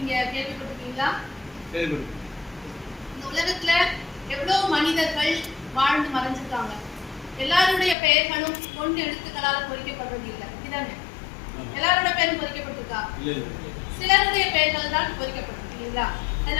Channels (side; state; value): right; drops out; at 8.0 s